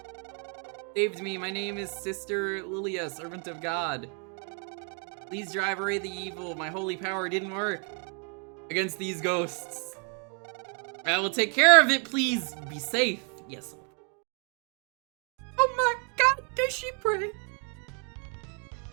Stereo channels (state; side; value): quieter; left; 39.3 dB